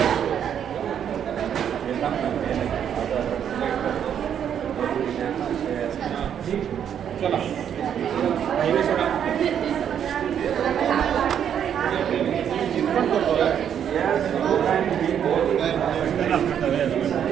चला हायवे सोडा.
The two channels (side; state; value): left; quieter; 8.9 dB